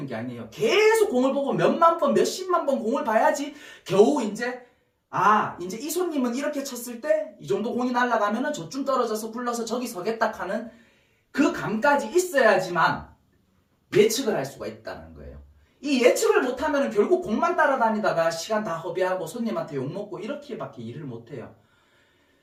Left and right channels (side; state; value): both; identical; correlation 1.00